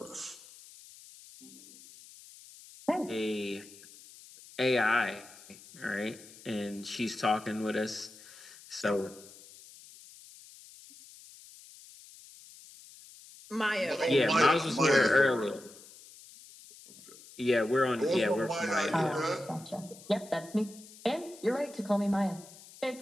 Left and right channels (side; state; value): left; noise; hiss, 20 dB below the sound